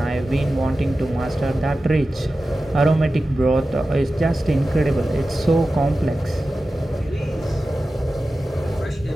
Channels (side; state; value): both; normal; correlation 0.94